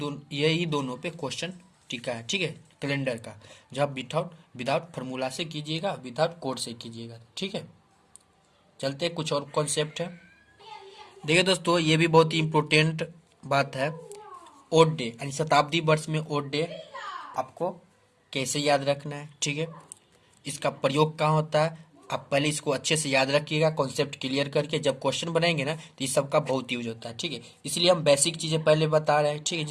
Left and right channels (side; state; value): both; identical; correlation 1.00